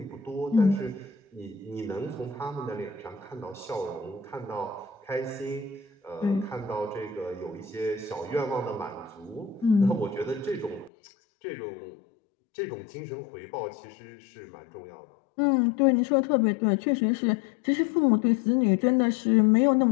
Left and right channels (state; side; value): drops out; right; at 10.9 s